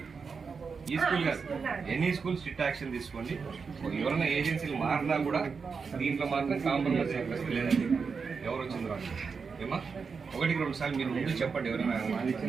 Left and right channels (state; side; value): quieter; left; 5.3 dB